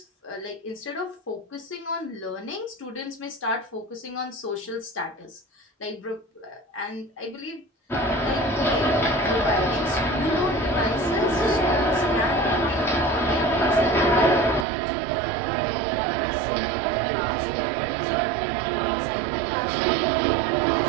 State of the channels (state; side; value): drops out; left; at 14.7 s